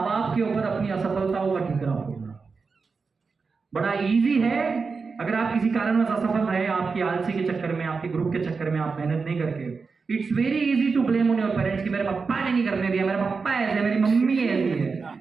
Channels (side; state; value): left; quieter; 4.8 dB